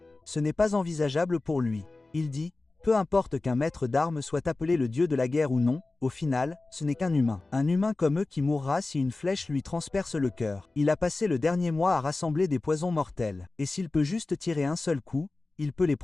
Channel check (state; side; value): quieter; right; 3.3 dB